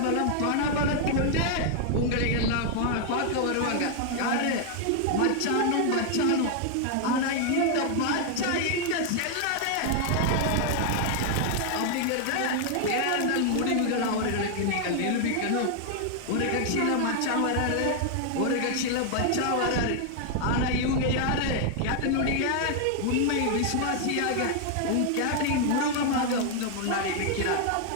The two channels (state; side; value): different; both; correlation 0.00